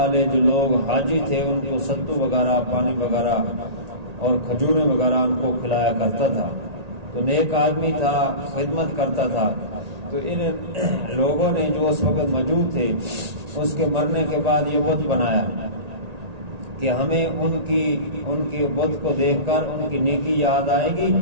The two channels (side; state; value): left; late; 1.8 ms